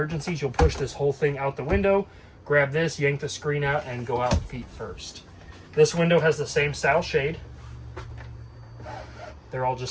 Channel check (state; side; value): identical; both; correlation 1.00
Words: you'll push this whole thing out the window, grab this, yank the screen out, and go out feet first. This window has the same style shade. They're all